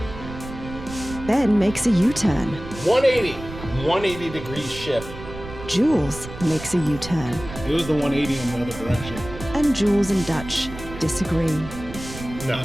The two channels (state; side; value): noise; right; rumble, 12 dB below the sound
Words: Ben makes a U-turn. 180 degree shift. Jules makes a U-turn. It was the 180 in the other direction. And Jules and Dutch disagree. No,